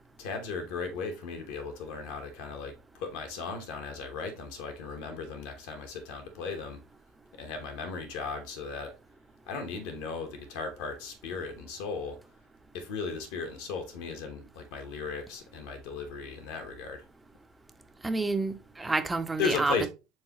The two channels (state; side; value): normal; both; correlation 0.51